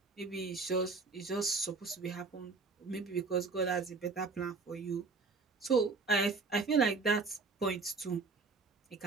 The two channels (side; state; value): left; quieter; 4.1 dB